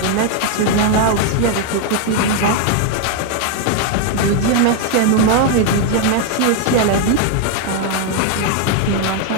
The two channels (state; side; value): different; both; correlation 0.01